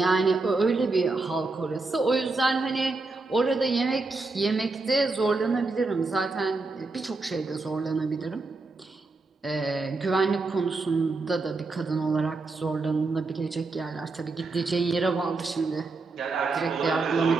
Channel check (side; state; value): left; quieter; 3.6 dB